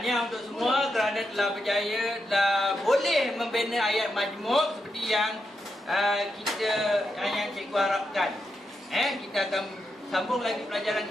untuk semua kerana telah berjaya, telah boleh membina ayat majmuk seperti yang yang cikgu harapkan. Kita akan sambung lagi pelajaran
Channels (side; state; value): both; normal; correlation 0.85